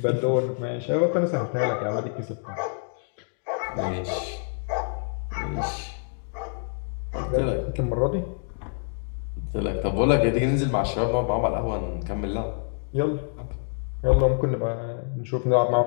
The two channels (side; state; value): right; silent; 61 dB below the other